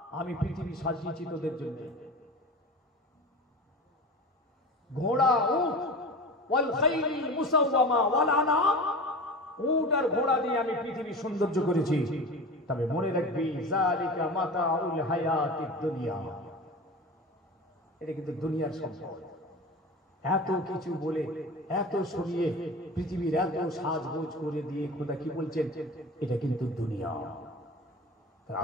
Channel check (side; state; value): both; normal; correlation 0.33